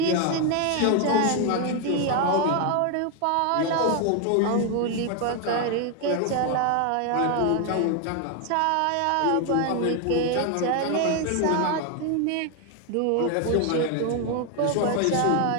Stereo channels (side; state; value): both; different; correlation 0.01